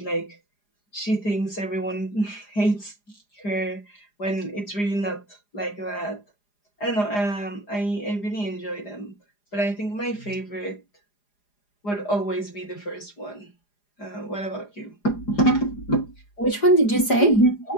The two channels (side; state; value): right; late; 4.9 ms